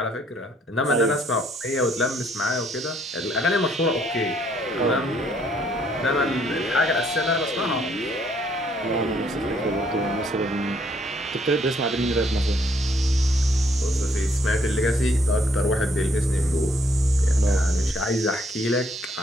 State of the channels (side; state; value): both; normal; correlation 0.67